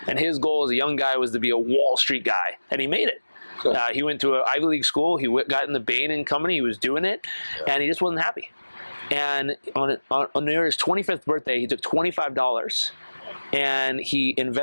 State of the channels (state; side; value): inverted; both; correlation -1.00